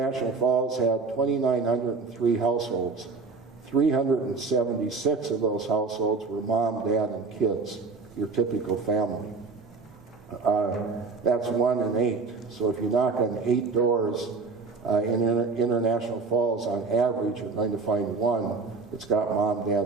Falls had 2,903 households. 376 of those households were mom, dad, and kids, your typical family. That's 1 in 8. So if you knock on 8 doors in International Falls, on average, you're going to find one that's got mom, dad,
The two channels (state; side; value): quieter; left; 4.3 dB